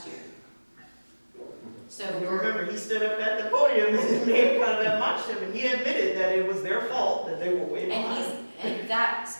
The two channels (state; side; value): inverted; both; correlation -1.00